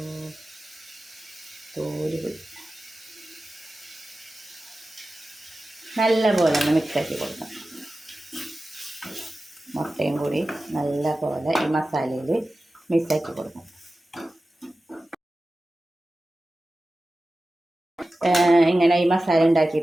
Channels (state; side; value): normal; both; correlation 0.95